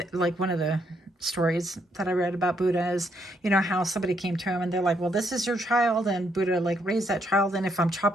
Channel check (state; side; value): normal; both; correlation 0.74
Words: like one of the stories that I read about Buddha is, you know, how somebody came to him and they're like, well, this is your child, and Buddha like raised that child, and if I'm